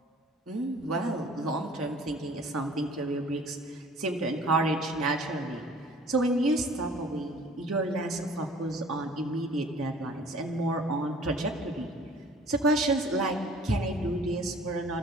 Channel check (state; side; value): normal; both; correlation 0.50